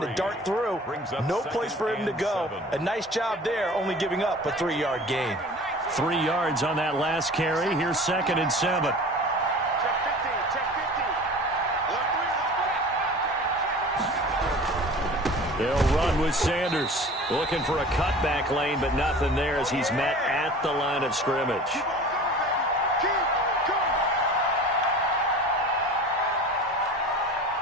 to dart through. No place for him to go. A nice job there, only giving up a 3-yard gain. 3 yards on that last carry. Here's 2nd and 7. They'll run with Sanders. Looking for a cutback lane, but nothing there as he's met at the line of scrimmage.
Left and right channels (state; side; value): normal; both; correlation 0.41